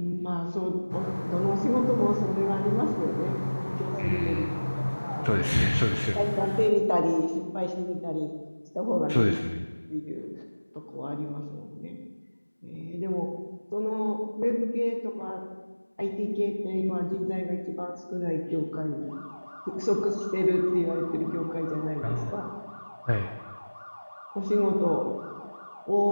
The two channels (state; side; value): inverted; both; correlation -1.00